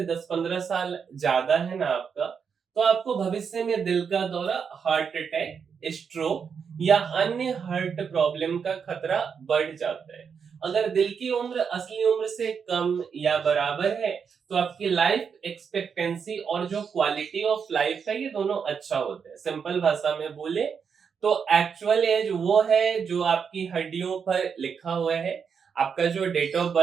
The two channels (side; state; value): left; quieter; 6.5 dB